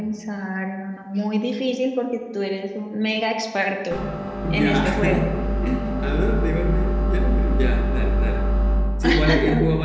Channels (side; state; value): both; identical; correlation 1.00